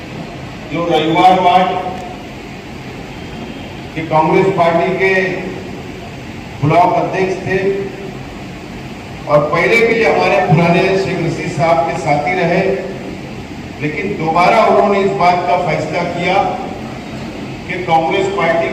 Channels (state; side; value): identical; both; correlation 1.00